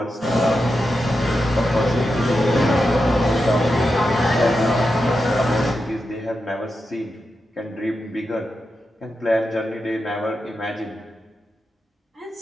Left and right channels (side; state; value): both; normal; correlation 0.88